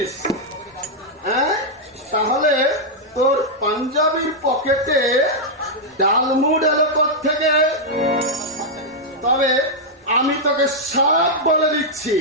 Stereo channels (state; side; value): normal; both; correlation -0.04